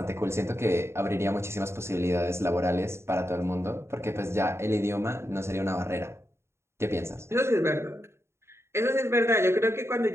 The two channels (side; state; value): left; late; 0.13 ms